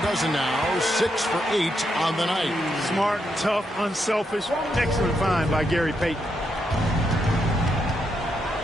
now. 6 for 8 on the night. Smart, tough, unselfish. Excellent find by Gary Payton.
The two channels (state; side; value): normal; both; correlation 0.81